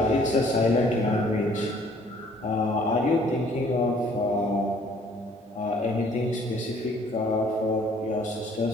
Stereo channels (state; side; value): normal; both; correlation 0.59